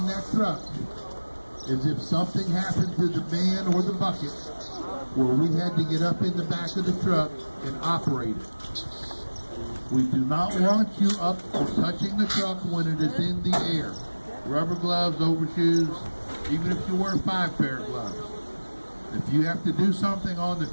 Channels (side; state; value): both; inverted; correlation -1.00